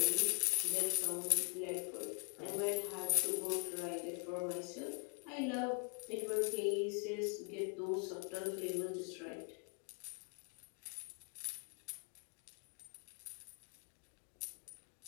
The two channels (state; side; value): quieter; right; 35.7 dB